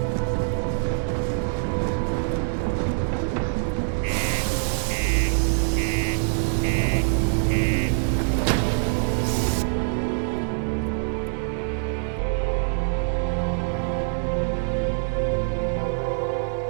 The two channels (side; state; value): left; silent; 62 dB below the other